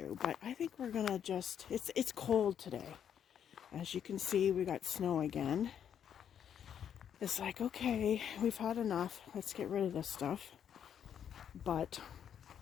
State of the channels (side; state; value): right; quieter; 8.8 dB